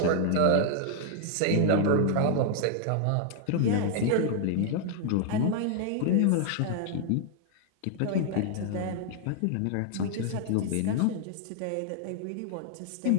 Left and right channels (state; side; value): different; both; correlation 0.00